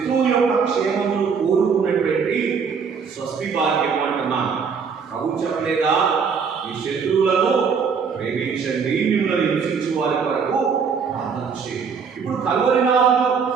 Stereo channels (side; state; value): left; quieter; 6.0 dB